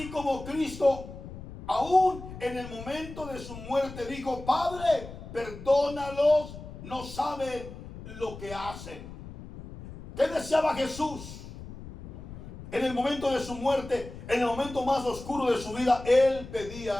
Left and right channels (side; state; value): left; noise; rumble, 13 dB below the sound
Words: como Cristo, aún en el momento de su muerte, dijo: Padre, perdónalos, no saben lo que hacen. ¿Qué deseaba Jesús? En el momento de su muerte, en el momento más oscuro de su vida, Él